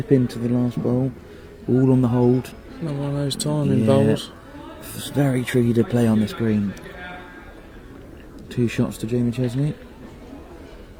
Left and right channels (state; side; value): identical; both; correlation 1.00